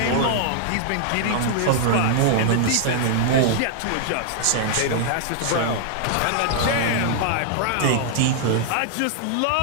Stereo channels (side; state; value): both; different; correlation 0.00